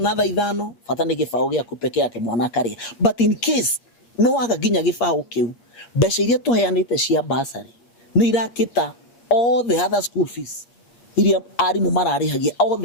ithano, fatane gifao giaku peke yake mwana akaria. But in case no akaginya gifao kiu, mbeca iria tuheanite cia bursary ni irakita all the other school fees. Iria arimu mararihagia all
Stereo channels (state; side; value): late; right; 8.5 ms